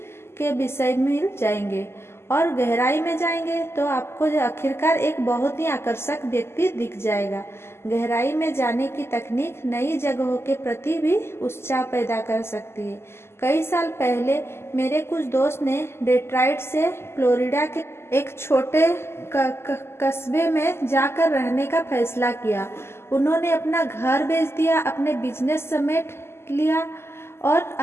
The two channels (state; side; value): late; right; 0.12 ms